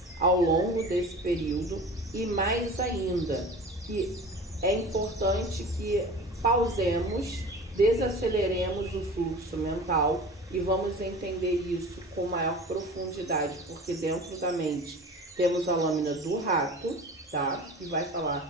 ao longo desse período, e mais ainda, que é importante que pausemos, desaceleremos o fluxo mental e vamos entender isso com maior profundidade, porque dentro da mente temos a lâmina do rato, tá? Que vai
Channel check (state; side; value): normal; both; correlation 0.37